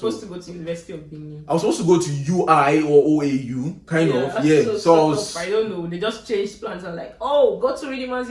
to go to University of Benin. I was supposed to go to UI or OAU, kind of. Yeah. So I don't know. They just changed plans and like, oh, go to Redeemers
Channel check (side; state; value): both; identical; correlation 1.00